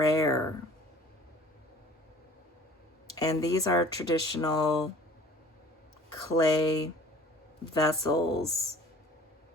And these are traditional clay vessels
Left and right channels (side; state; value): both; normal; correlation 0.48